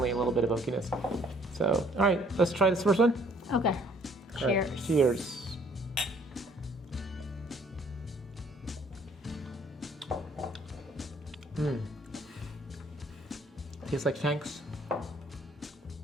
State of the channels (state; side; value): normal; both; correlation 0.61